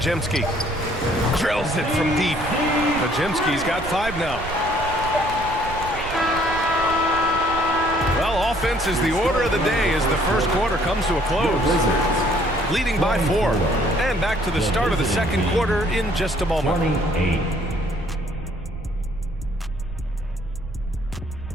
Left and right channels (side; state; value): right; noise; rumble, 11 dB below the sound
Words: Drills it from deep. Pajemski's got 5 now. Well, offense is the order of the day as the first quarter comes to a close. Leading by 4. And back to the start of the second quarter in just a moment. 28.